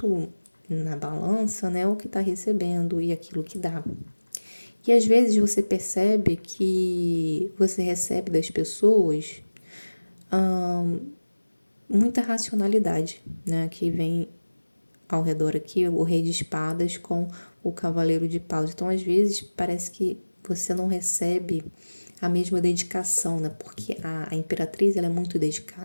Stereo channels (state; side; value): inverted; both; correlation -1.00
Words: na balança, né, o que está recebendo e aquilo que dá. E às vezes você percebe que você recebe das pessoas muita racionalidade, né, que vem ao redor aqui, o Rei de Espadas com o Cavaleiro de Paus. Então, às vezes, parece que você não recebe a mesma dedicação, né? Porque a Imperatriz, ela é muito